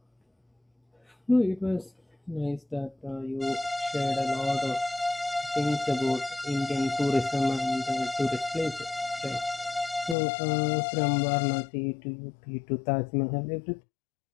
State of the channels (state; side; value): drops out; right; at 10.2 s